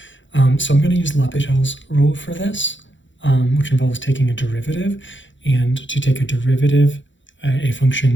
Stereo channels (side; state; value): right; late; 0.54 ms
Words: So I'm going to use L'Hopital's rule for this, which involves taking a derivative. And to take a derivative, a